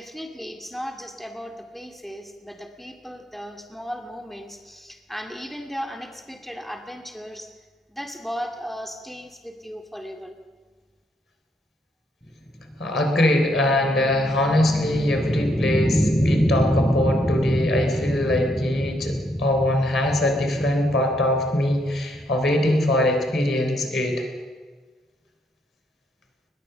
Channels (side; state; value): both; normal; correlation 0.74